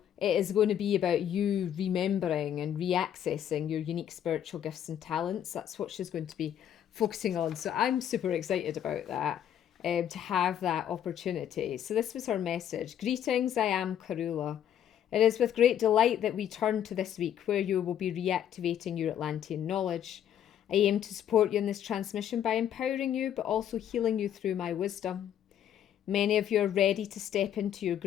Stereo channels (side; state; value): right; quieter; 10.1 dB